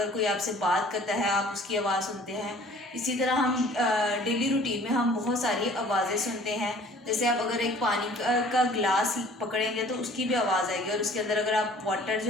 कोई आपसे बात करता है आप उसकी आवाज़ सुनते हैं. इसी तरह हम डेली रूटीन में हम बहुत सारी आवाज़ें सुनते हैं. जैसे आप अगर एक पानी का ग्लास पकड़ेंगे तो उसकी भी आवाज़ आएगी, और उसके अंदर अगर आप वाटर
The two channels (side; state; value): both; normal; correlation 0.51